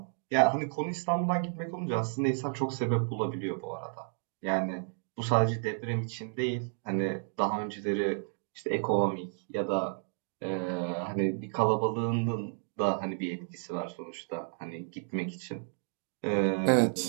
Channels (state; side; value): silent; left; 57 dB below the other